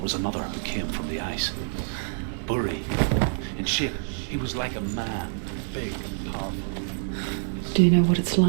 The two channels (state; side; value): silent; left; digital silence